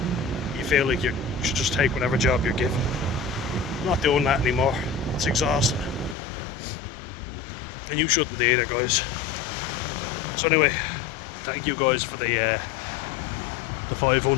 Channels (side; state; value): right; drops out; at 6.2 s